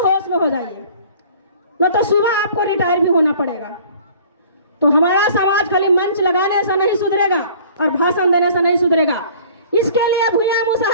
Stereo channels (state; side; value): inverted; both; correlation -0.50